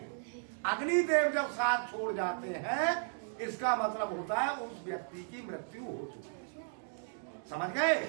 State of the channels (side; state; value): left; silent; digital silence